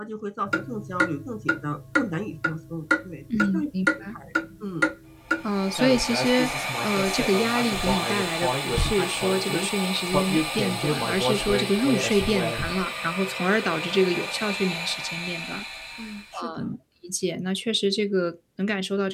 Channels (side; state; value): both; identical; correlation 1.00